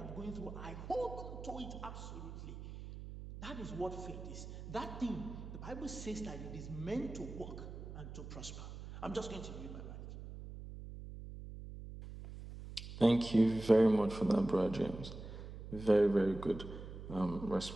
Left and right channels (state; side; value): noise; right; hum, 11 dB below the sound